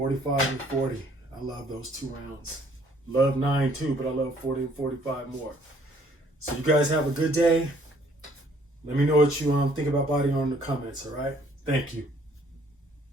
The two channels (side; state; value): both; normal; correlation 0.62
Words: and 40. I love those 2 rounds. Love 9 too, but I love 40 and 45 more. So you guys have a good day. Let me know what you think about body armor in the comments, all right? Thank you.